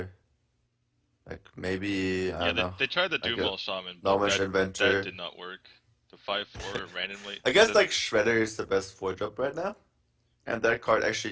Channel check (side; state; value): both; identical; correlation 1.00